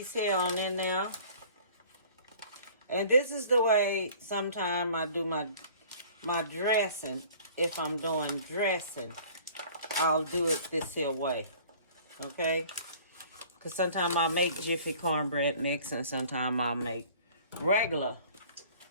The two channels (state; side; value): inverted; both; correlation -0.50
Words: here on in now. And this is the way sometimes I do my dressing. If I'm doing dressing, I'll do it this here way. Okay? Because sometimes I'll make Jiffy cornbread mix, and sometimes I'll make regular